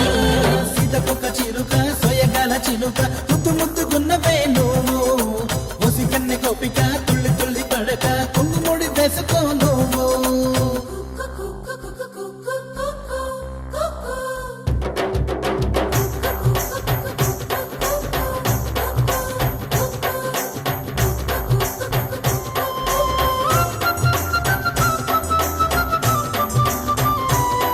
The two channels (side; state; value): both; identical; correlation 1.00